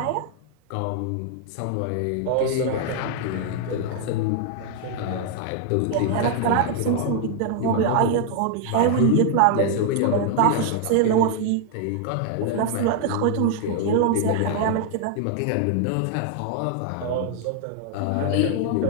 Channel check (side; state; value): both; different; correlation 0.00